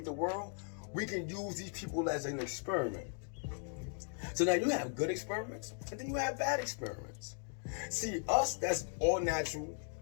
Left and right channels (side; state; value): right; silent; 53 dB below the other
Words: the world, we can use these people as an experiment. So now you have good experiments, and then you have bad experiments. See, us, that's all natural,